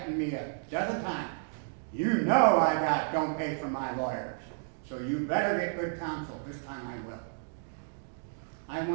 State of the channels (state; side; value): silent; left; digital silence